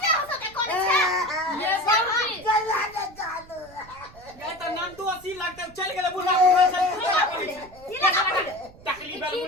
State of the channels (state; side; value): noise; right; rumble, 22 dB below the sound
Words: हो सके कोन छ ये बाबूजी गला न जानो गए त नाम तो 80 लगते चल गेले बुढ़ा से टकली बेल